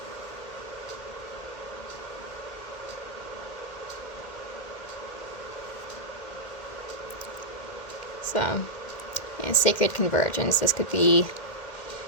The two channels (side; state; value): right; late; 2.1 ms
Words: So, Sacred Convergence. This could be